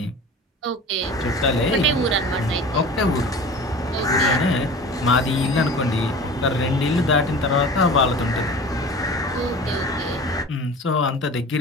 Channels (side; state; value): both; normal; correlation 0.38